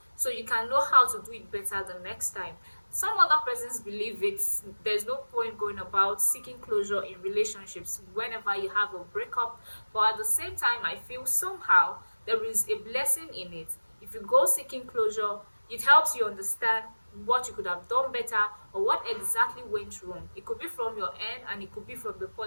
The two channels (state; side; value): inverted; both; correlation -1.00